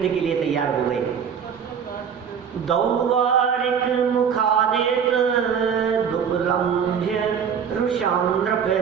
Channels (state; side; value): quieter; left; 7.3 dB